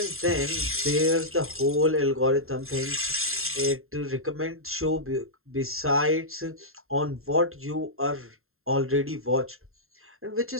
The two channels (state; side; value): late; left; 0.61 ms